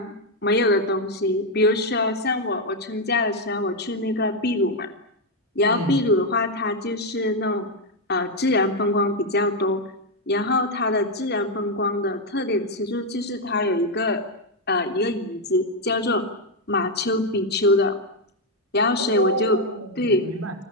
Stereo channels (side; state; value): both; normal; correlation 0.03